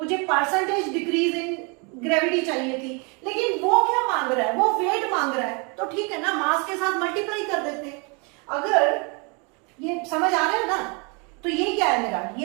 परसेंटेज डिक्रीज इन ग्रेविटी चाहिए थी, लेकिन वो क्या मांग रहा है, वो वेट मांग रहा है। तो ठीक है ना, मास के साथ मल्टीप्लाई कर देते हैं। अगर ये समझ आ रहा है ना, तो ये क्या है मेरा,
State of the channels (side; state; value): left; quieter; 32.6 dB